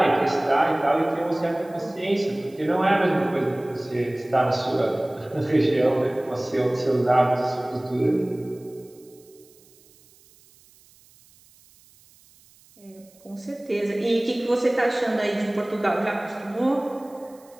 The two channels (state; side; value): noise; right; hiss, 28 dB below the sound